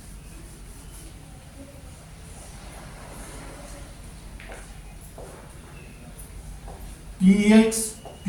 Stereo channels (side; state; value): both; identical; correlation 1.00